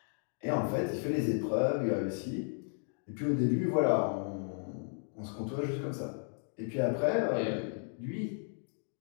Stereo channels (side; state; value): right; silent; 55 dB below the other